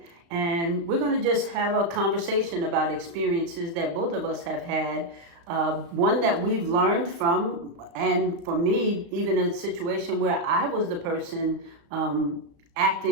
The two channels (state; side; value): late; left; 35 ms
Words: and we're going to just have a conversation about experiences that both of us have had. One that we've learned from, and for me, even a situation where I was the person